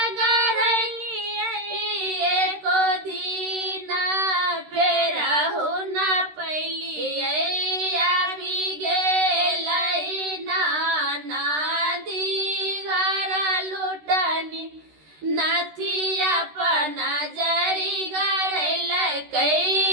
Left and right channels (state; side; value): late; left; 13 ms